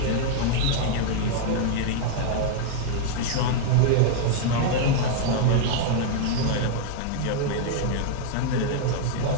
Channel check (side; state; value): both; different; correlation -0.01